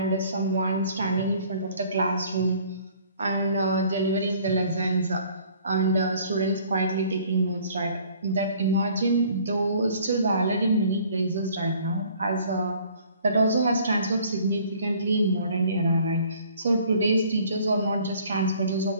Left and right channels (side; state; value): both; inverted; correlation -0.56